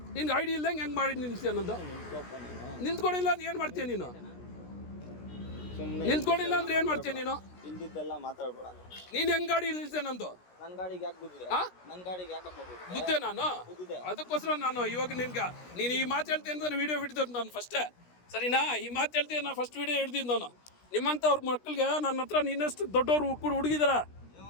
ನಿನ್ಗೆ ಐಡಿ ಇಲ್ದಂಗೆ ಹೆಂಗೆ ಮಾಡಿ ನಿಲ್ಸಿ ಅನ್ನೋದು? ನಿಂತ್ಕೊಂಡಿಲ್ಲ ಅಂದ್ರೆ ಏನು ಮಾಡ್ತೀಯ ನೀನು? ನಿಂತ್ಕೊಂಡಿಲ್ಲ ಅಂದ್ರೆ ಏನು ಮಾಡ್ತೀಯ ನೀನು? ಇಲ್ದಿದ್ದೆಲ್ಲ ಮಾತಾಡಬೇಡ. ನೀನು ಹೆಂಗೆ ಗಾಡಿ ನಿಲ್ಸೆ ನಂದು? ನನ್ನ ಗಾಡಿಗೆ ಯಾಕೆ ಗುದ್ದಿದೆ? ನನ್ನ ಗಾಡಿಗೆ ಯಾಕಪ್ಪ ಗುದ್ದೆ ನಾನು? ಅದಕ್ಕೋಸ್ಕರ ನಾನು ಇವಾಗ ನೀನು ಈ ಮಾತು ಹೇಳ್ತೀನಿ ಅಂತ ವಿಡಿಯೋ ಹಿಡಿದ್ರು ನಾನು ಫಸ್ಟೇ, ಸರಿನಾ? ಈ ಮಾತು ಹೇಳ್ತೀನಿ, ನಾನು ಫಸ್ಟ್ ವಿಡಿಯೋ ಹಿಡ್ದಿದ್ದು ನಾನು. ನಿಮ್ಮಂಥವ್ರ ಮಕ್ಕಳಿಗೆ ನನ್ನ ಹತ್ರ ನಿನ್ನಷ್ಟು ದೊಡ್ಡವ್ರು ಕೂಡ ಹುಡುಗಿದಾರ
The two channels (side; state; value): right; late; 16 ms